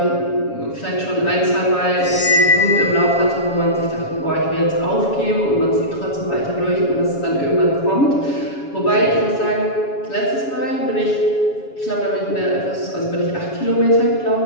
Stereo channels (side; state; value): right; late; 7.2 ms